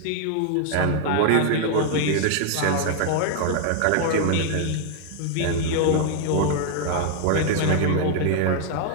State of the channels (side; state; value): both; different; correlation 0.00